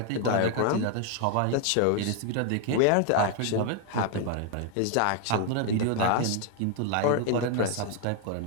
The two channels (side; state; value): both; different; correlation 0.00